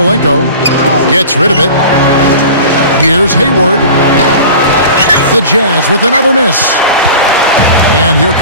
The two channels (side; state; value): both; inverted; correlation -0.38